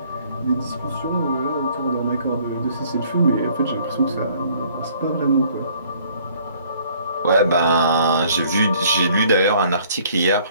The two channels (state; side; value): inverted; both; correlation -0.59